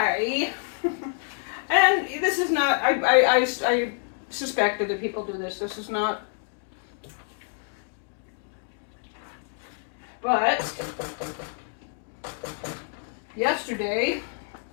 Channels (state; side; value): silent; right; 60 dB below the other